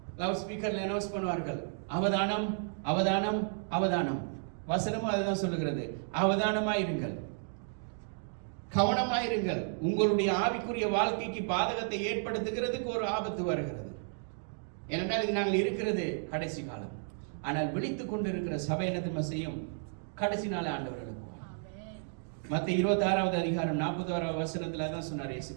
லவுட் ஸ்பீக்கர்ல அனௌன்ஸ் பண்ணுவார்கள், அவதானம் அவதானம் அவதானம். வசனமும் அதுதான் சொல்லுகிறது, அவதானமாயிருங்கள், கவனமாயிருங்கள். உங்களுடைய ஆவிக்குரிய வாழ்க்கைக்கு பாதகத்தை ஏற்படுத்துகிறதுக்கு ஒரு ஆபத்து வருகிறது. ஏனென்றால் இது நாங்கள் இருக்கிறது கடைசி காலம். ஆனால் விழித்துக் கொண்டு இருக்கிற சபை என்ன செய்யும்? கடைசி நாள் ஆண்டவர்களுக்கு. மத்தேயு 26:40 தான் சொன்னார் இயேசு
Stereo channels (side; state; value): left; silent; digital silence